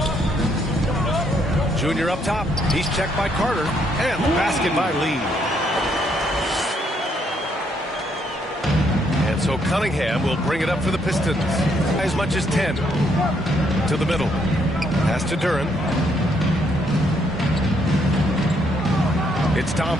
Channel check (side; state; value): both; normal; correlation 0.72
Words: Junior up top. He's checked by Carter. And the basket by Lee. And so Cunningham will bring it up for the Pistons. As much as 10. To the middle. Pass to Duran. It's